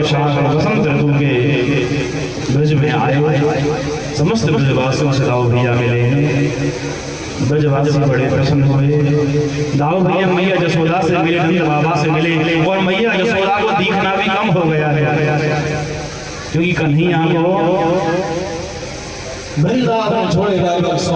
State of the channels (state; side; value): identical; both; correlation 1.00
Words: वसंत ऋतु के ब्रज में आए। समस्त ब्रजवासियों से दाऊ भैया मिले हैं, ब्रजवासी बड़े प्रसन्न हुए। दाऊ भैया मैया जसोदा से मिले, नंद बाबा से मिले, और मैया जसोदा को दिखना भी कम हो गया है, क्योंकि कन्हैया को वृंदावन छोड़े जाए 100